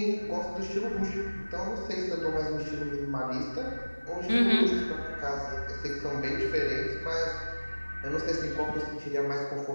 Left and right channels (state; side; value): inverted; both; correlation -1.00